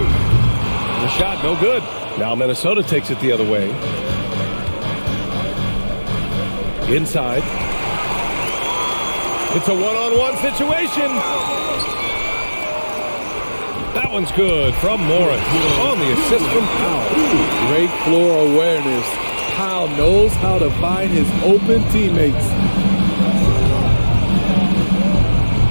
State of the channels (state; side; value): inverted; both; correlation -1.00